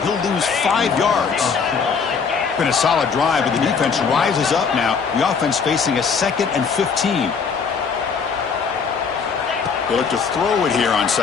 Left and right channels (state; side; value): quieter; right; 5.8 dB